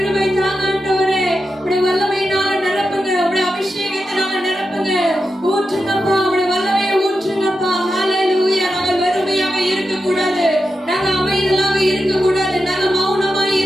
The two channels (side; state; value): both; normal; correlation 0.89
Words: தாங்க ஆண்டவரே. உடைய வல்லமையினால நிரப்புங்க, உடைய அபிஷேகத்தினால நிரப்புங்க, ஊற்றுங்கப்பா, உடைய வல்லமையை ஊற்றுங்கப்பா. ஹல்லேலூயா. நாங்கள் வெறுமையாக இருக்க கூடாது, நாங்க அமைதலாக இருக்க கூடாது, நாங்க மௌனமாய்